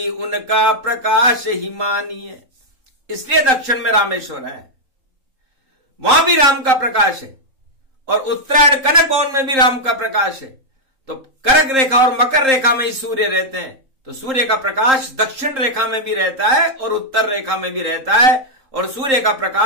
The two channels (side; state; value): left; late; 3.8 ms